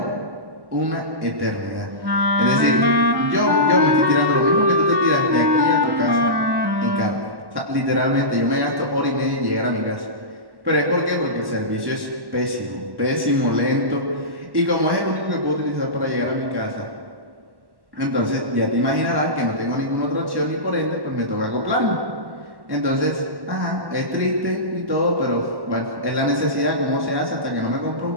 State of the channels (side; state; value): left; late; 1.1 ms